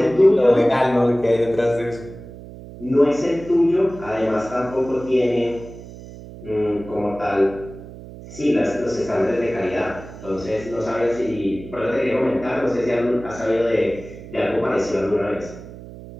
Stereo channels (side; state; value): right; noise; hum, 15 dB below the sound